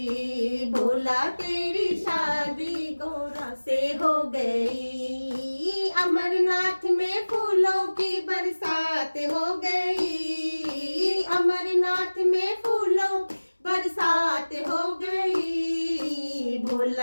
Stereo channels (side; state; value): both; inverted; correlation -1.00